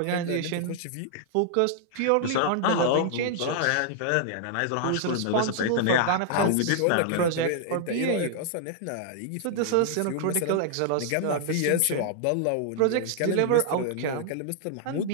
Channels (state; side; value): different; both; correlation 0.00